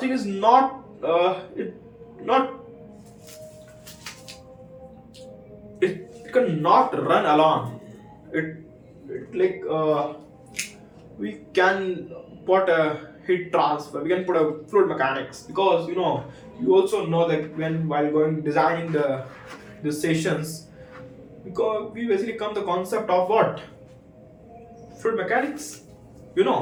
is not not it cannot run alone. It like we can put a heat transfer, we can put a fluid mechanics, because you also know that when while going designing the sessions, because we basically come the concept of what fluid mechanics.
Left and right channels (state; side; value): identical; both; correlation 1.00